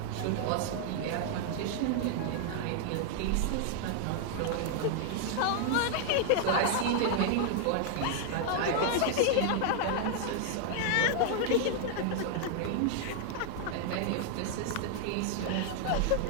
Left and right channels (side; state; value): both; different; correlation 0.00